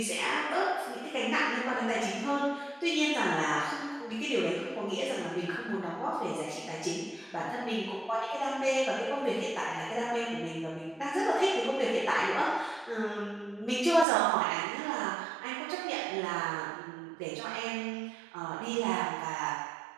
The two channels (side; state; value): left; drops out; at 14.1 s